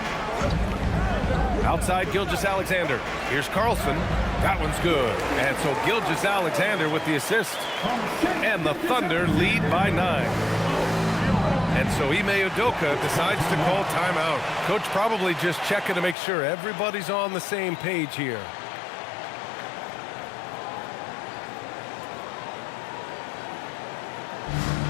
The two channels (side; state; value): right; drops out; at 16.2 s